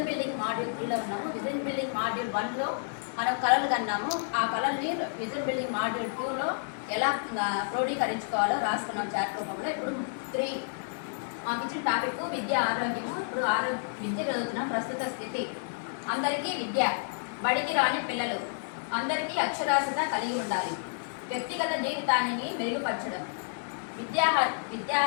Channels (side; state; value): right; silent; 58 dB below the other